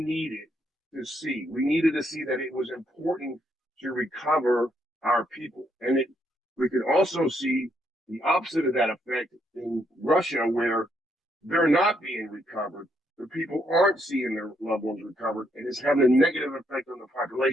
to see. We needed to see that it was important to recover our people. And we could also see the opposite of that effect in Russia, where they're not being recovered. The people aren't seeing their loved ones recovered, and it's having a negative effect on the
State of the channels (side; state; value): both; normal; correlation 0.74